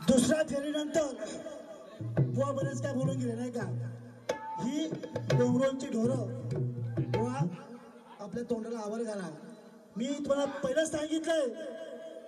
दुसऱ्या फेरीनंतर बुवा बरेच काय बोलून गेले नाही का? ही डोंगरांची ढोरं बुवा आपल्या तोंडाला आवर घाला. मी तुम्हाला पहिलं सांगितलंय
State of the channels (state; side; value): identical; both; correlation 1.00